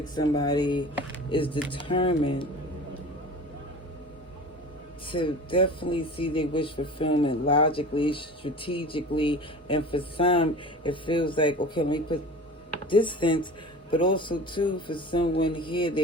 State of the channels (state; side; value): normal; both; correlation 0.37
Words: somebody is determined to definitely see their wish fulfillment logically, strategically, and for some, it feels like, okay, let me put distance. But also, too, for someone here,